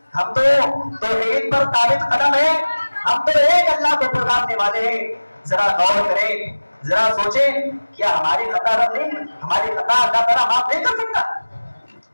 ہم تو توحید پر ثابت قدم ہیں، ہم تو ایک اللہ کو پکارنے والے ہیں۔ ذرا غور کریں، ذرا سوچیں، کیا ہماری خطا رب نہیں، ہماری خطا اللہ تعالیٰ معاف نہیں کر سکتا؟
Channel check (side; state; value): both; inverted; correlation -1.00